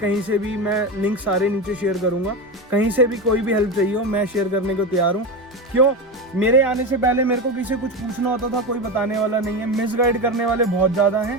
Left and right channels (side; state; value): both; normal; correlation 0.20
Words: से भी, मैं लिंक सारे नीचे शेयर करूँगा, कहीं से भी कोई भी हेल्प चाहिए हो मैं शेयर करने को तैयार हूँ। क्यों? मेरे आने से पहले मेरे को किसी कुछ पूछना होता था, कोई बताने वाला नहीं है। मिसगाइड करने वाले बहुत ज़्यादा हैं,